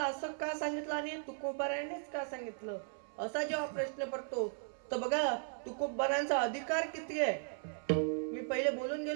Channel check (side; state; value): left; silent; 53 dB below the other